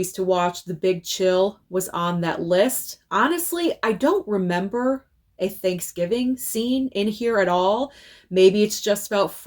to watch, The Big Chill was on that list. Honestly, I don't remember a Thanksgiving scene in here at all. Maybe it's just about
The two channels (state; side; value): identical; both; correlation 1.00